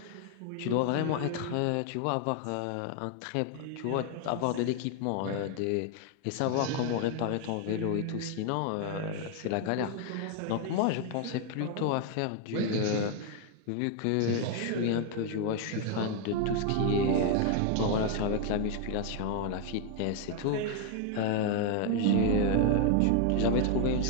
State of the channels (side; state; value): both; different; correlation 0.00